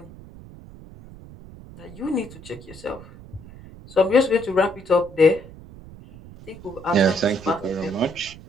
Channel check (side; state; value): right; noise; rumble, 18 dB below the sound